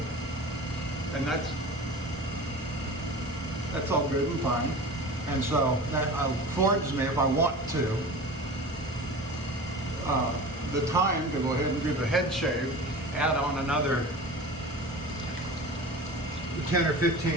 And that's all good and fine. And so that affords me, if I want to, the time to go ahead and do the head shave, add on another 10 or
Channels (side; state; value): both; normal; correlation 0.35